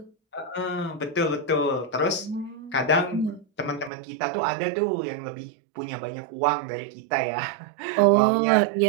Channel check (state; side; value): drops out; left; at 3.9 s